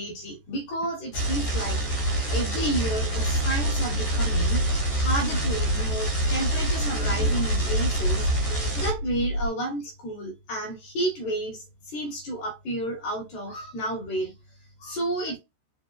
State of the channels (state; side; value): late; right; 14 ms